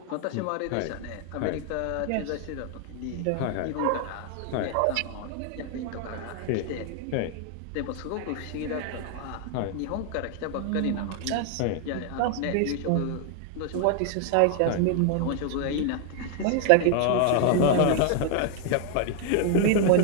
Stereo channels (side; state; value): both; different; correlation 0.00